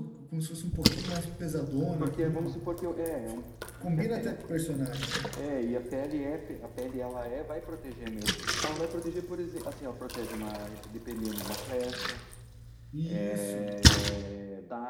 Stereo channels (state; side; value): identical; both; correlation 1.00